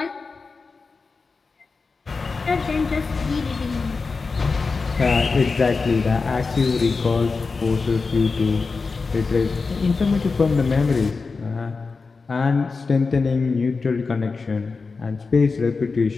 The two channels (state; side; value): quieter; right; 4.4 dB